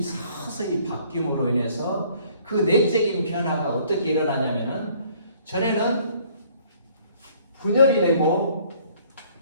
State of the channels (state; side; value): inverted; both; correlation -0.59